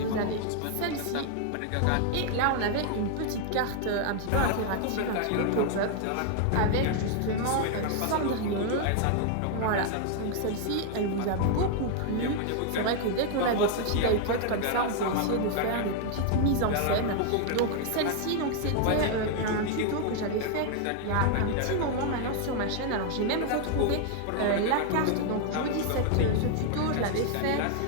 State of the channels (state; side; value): different; both; correlation 0.00